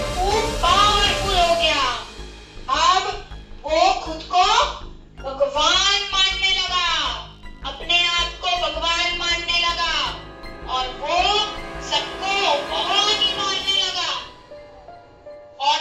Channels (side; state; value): both; identical; correlation 1.00